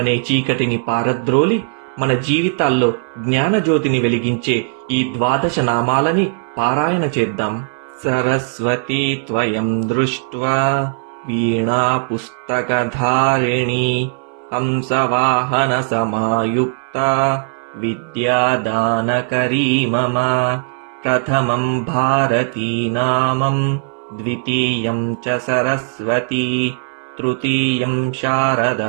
చీకటిని పారద్రోలి మన జీవితాల్లో జ్ఞానజ్యోతిని వెలిగించే ఈ 12 నామాలని పారాయణ చేద్దాం. సరస్వతీ త్వయం దృష్ట్వా వీణా పుస్తకధారిణీ హంసవాహన సమాయుక్త విద్యాదానకరీ మమ. ప్రథమం భారతీ నామం ద్వితీయం చ సరస్వతీ తృతీయం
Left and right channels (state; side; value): silent; left; 62 dB below the other